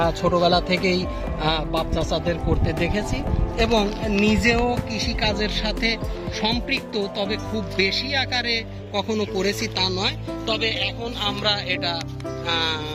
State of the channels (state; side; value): identical; both; correlation 1.00